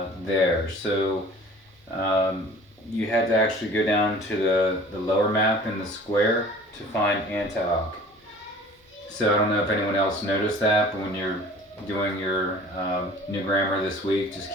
there. So you had to actually go down to the lower map in the square to find Antioch. So I don't know if anyone else noticed that, but when you're doing your new grammar this week, just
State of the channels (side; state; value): both; normal; correlation 0.47